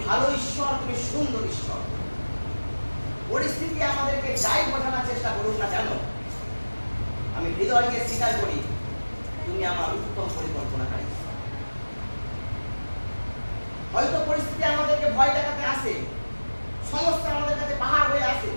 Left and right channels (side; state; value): both; inverted; correlation -1.00